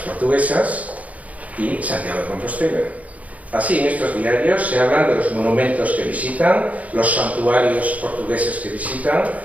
y Santiago de Compostela. Así, en estos diarios se hablan de los monumentos que visitan, los santuarios portugueses que visitan,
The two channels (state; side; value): late; left; 0.070 ms